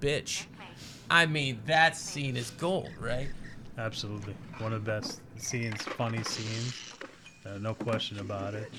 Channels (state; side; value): identical; both; correlation 1.00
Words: I mean, that scene is gold, right? Absolutely. One of the best scenes, funny scenes. No question about it.